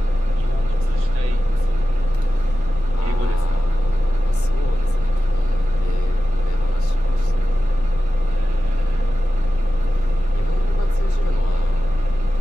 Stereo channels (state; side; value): noise; left; rumble, 14 dB below the sound